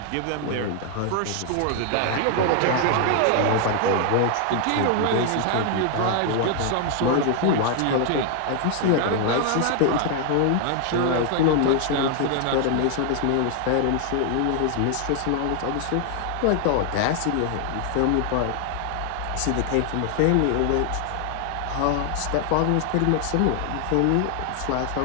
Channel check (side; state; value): both; different; correlation 0.00